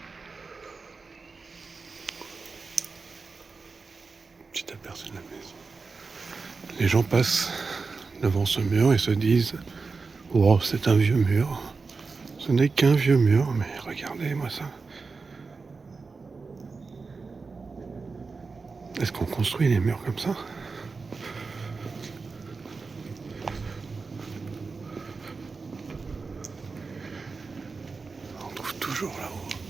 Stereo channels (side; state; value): left; quieter; 4.4 dB